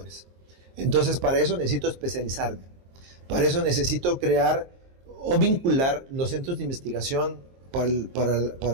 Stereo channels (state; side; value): late; left; 23 ms